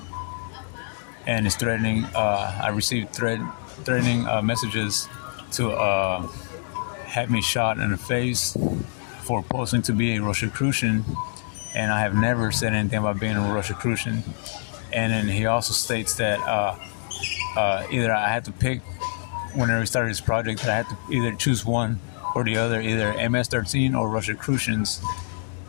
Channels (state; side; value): silent; right; digital silence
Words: And is threatening. I received threatening messages to have me shot in the face for posing to be a Rosicrucian, and I have never said anything about being a Rosicrucian. And then he also states that either I had to pick, whenever we started this project, that I had to either choose one or the other, either MS-13 or Rosicrucians,